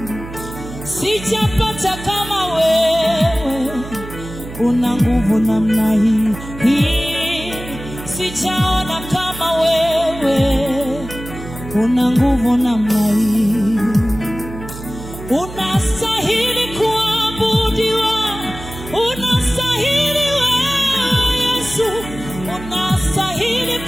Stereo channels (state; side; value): noise; right; hum, 12 dB below the sound